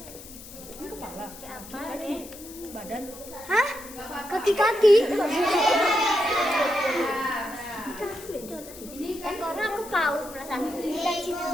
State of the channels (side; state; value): left; noise; hiss, 16 dB below the sound